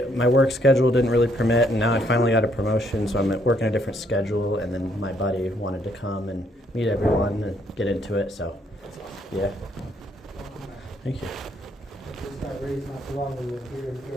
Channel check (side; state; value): both; normal; correlation 0.70